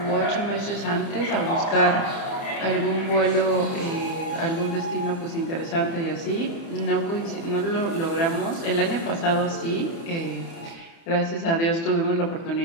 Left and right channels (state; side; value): late; right; 30 ms